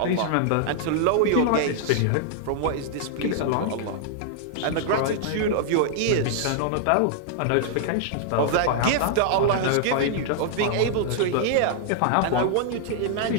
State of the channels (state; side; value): different; both; correlation -0.01